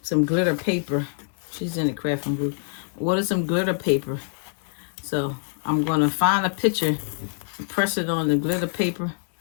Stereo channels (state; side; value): silent; right; digital silence